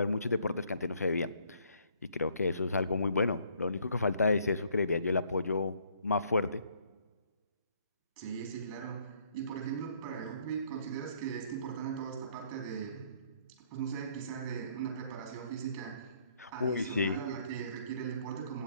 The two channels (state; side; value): inverted; both; correlation -0.65